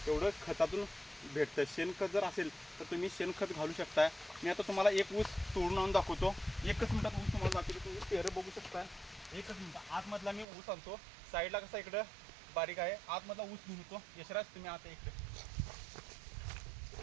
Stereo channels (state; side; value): drops out; left; at 10.5 s